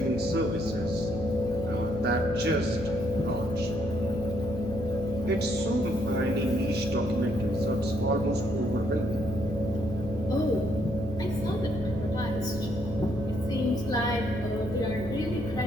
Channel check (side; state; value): left; noise; hum, 11 dB below the sound